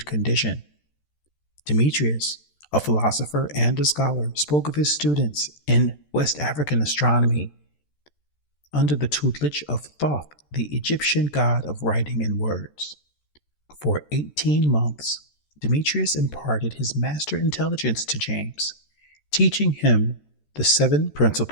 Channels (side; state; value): right; late; 13 ms